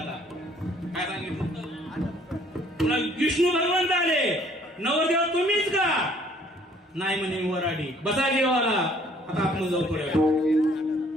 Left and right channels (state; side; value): normal; both; correlation 0.59